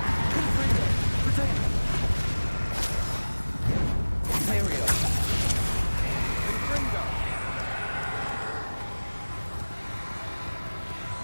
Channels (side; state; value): both; inverted; correlation -1.00